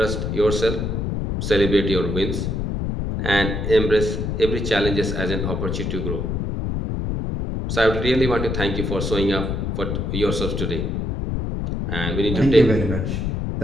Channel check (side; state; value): left; noise; rumble, 1 dB below the sound